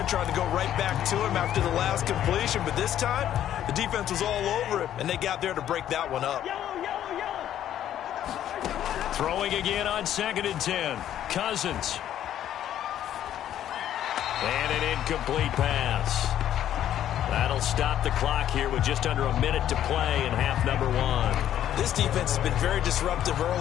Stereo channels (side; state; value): right; quieter; 11.2 dB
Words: trying to go right back to him after the last completion. But this time, the defense was all over him, and they got there to break that one up. Throwing again on 2nd and 10. Cousins. And an incomplete pass. That'll stop the clock here with just under a minute to play in half number 1. This defense has been very disruptive